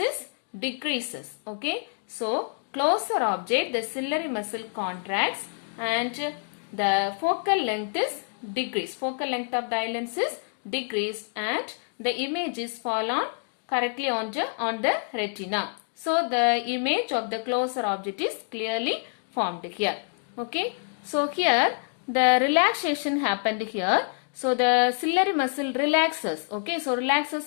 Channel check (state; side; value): silent; right; 60 dB below the other